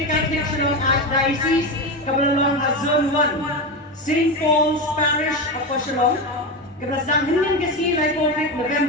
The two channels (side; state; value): both; normal; correlation 0.17